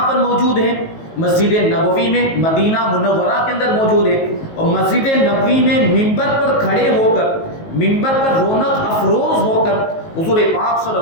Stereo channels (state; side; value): late; right; 19 ms